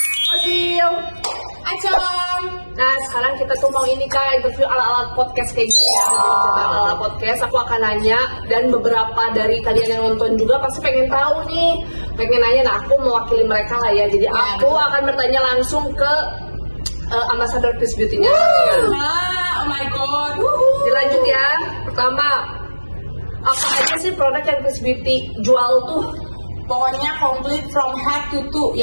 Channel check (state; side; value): inverted; both; correlation -1.00